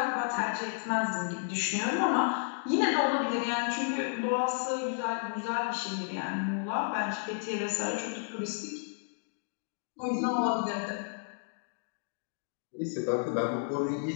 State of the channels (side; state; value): right; silent; digital silence